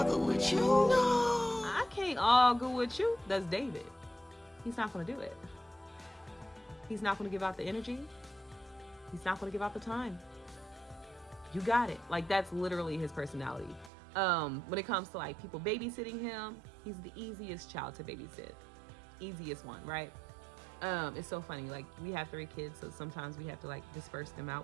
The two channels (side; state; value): left; drops out; at 13.9 s